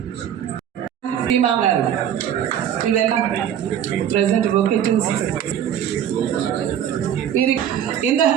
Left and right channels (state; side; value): quieter; left; 9.8 dB